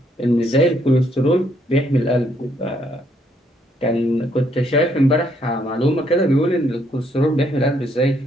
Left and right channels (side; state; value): both; normal; correlation 0.71